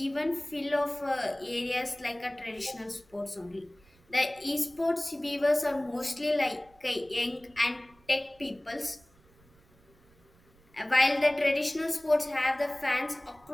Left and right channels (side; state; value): right; noise; rumble, 30 dB below the sound